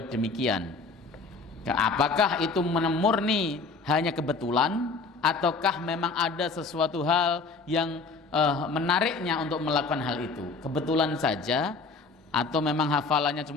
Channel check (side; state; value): right; quieter; 4.3 dB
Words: demikian. Apakah itu murni hanya kebetulan, ataukah memang ada sesuatu hal yang menariknya untuk melakukan hal itu? Kebetulan saja atau memang hafalannya